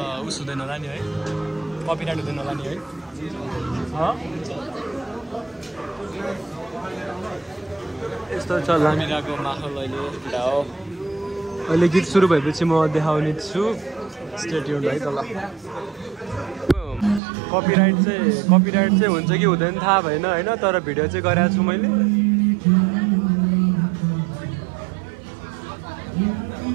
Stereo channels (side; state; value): left; drops out; at 17.2 s